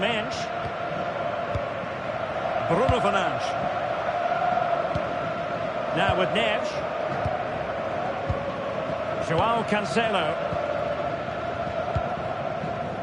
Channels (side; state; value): both; identical; correlation 1.00